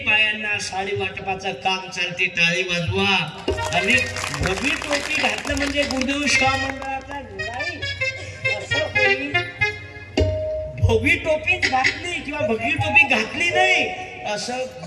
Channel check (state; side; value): identical; both; correlation 1.00